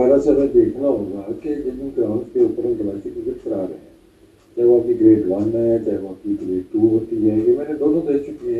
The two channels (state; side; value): identical; both; correlation 1.00